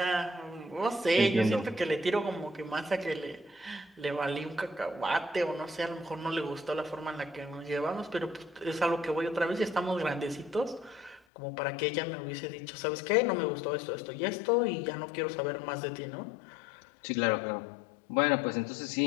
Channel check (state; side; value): drops out; right; at 11.2 s